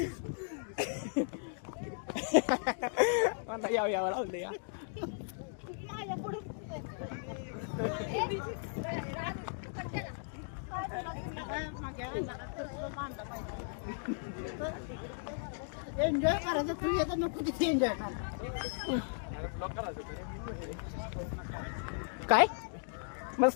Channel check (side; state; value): right; silent; digital silence